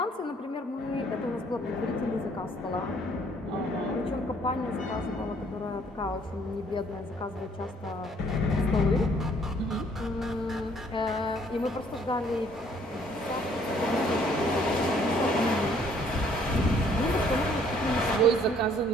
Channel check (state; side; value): normal; both; correlation 0.62